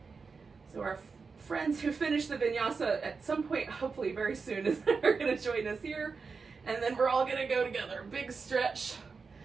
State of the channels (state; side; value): quieter; left; 4.9 dB